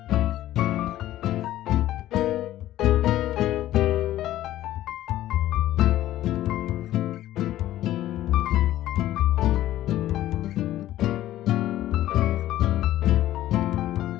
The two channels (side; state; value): right; quieter; 13.9 dB